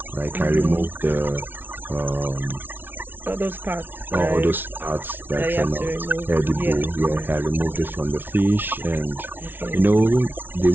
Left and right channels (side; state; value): left; late; 0.097 ms